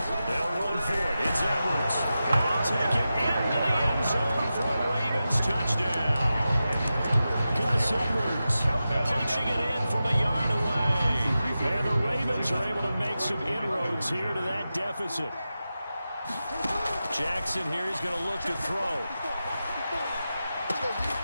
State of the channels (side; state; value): both; inverted; correlation -0.92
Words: They'll run for it. It's Edwards. And they'll take it into the end zone for a Ravens touchdown. Gus Edwards punching it in from a yard away. And the Ravens are able to make some inroads here to that deficit. Jackson here is going to look to throw.